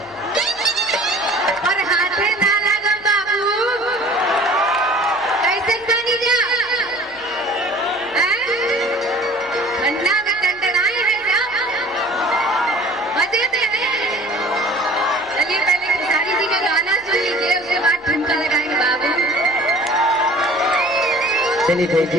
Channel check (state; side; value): noise; left; hum, 29 dB below the sound